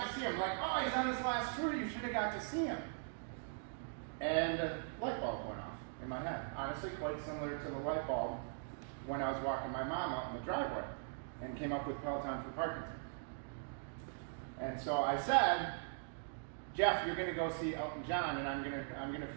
to see him. Like, oh, he's on his last tour. You should have got to see him." And a light bulb went off in my head. Honestly, quite similar to the light bulb when I was walking my mom out in the driveway and came up with Peloton for Parkinson's. And so I said, "Jeff, you're gonna go see Elton John, and I'm gonna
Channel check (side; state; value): left; silent; digital silence